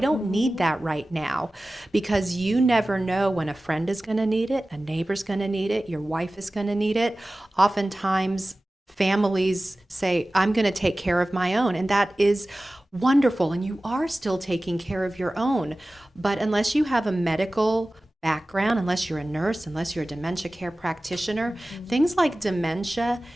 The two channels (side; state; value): both; normal; correlation 0.97